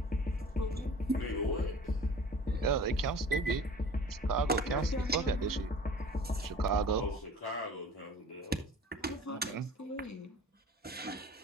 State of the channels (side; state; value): both; normal; correlation 0.44